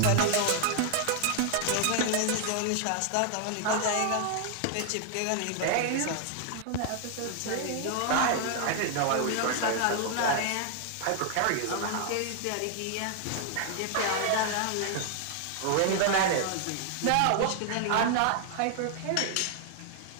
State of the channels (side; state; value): both; different; correlation 0.00